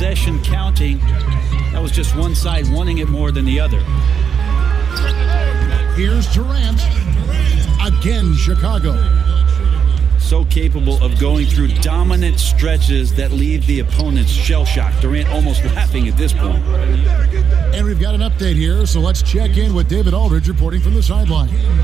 counting. That was just one side wanting it more than the other. Here's Durant. Again, Chicago. So capable of going through dominant stretches that leave the opponents shell-shocked. Durant almost laughing at this point. And we've got an update here, so let's check in with David Aldridge reporting from the sideline.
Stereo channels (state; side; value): quieter; left; 7.1 dB